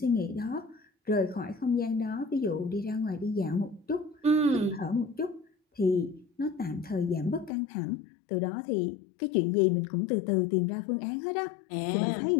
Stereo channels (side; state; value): right; drops out; at 7.5 s